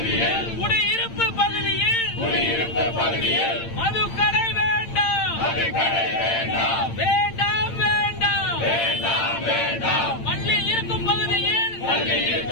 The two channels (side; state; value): right; late; 8.8 ms